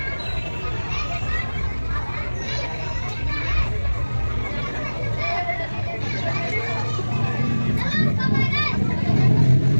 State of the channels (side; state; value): both; inverted; correlation -1.00